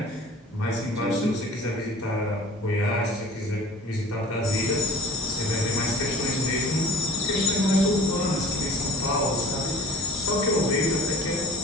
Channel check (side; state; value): both; normal; correlation 0.43